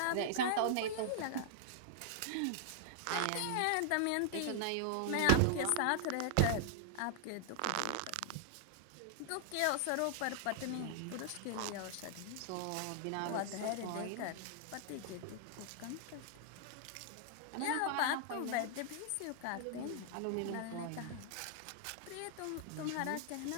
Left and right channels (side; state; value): both; different; correlation -0.01